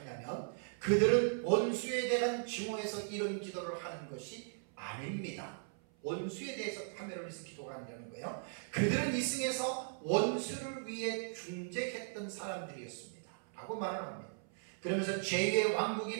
그들은 원수에 대한 증오에서 이런 기도를 하는 것이 아닙니다. 원수에 대해서 파멸을 위해서 기도가 아니라는 거예요. 그들은 이승에서 원수를 위해 중재했던 사람들이었습니다. 라고 말을 합니다. 그러면서 죄의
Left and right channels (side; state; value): left; silent; 53 dB below the other